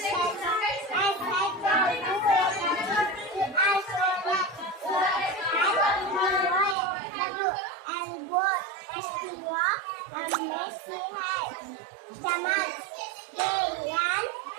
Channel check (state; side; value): drops out; left; at 6.8 s